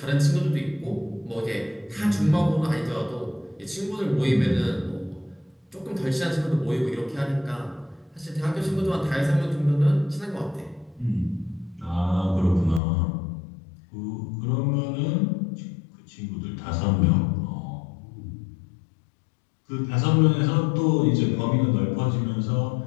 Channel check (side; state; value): right; drops out; at 12.8 s